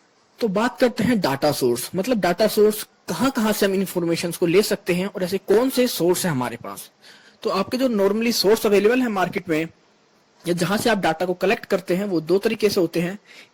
तो बात करते हैं डाटा सोर्स। मतलब डाटा सोर्स कहां कहां से हम इंफॉर्मेशन को ले सकते हैं और ऐसे कौन से सोर्स है हमारे पास। तो आपके जो नॉर्मली सोर्स अवेलेबल है मार्केट में या जहां से आप डाटा को कलेक्ट करते हैं, वो दो तरीके से होते हैं।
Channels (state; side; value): identical; both; correlation 1.00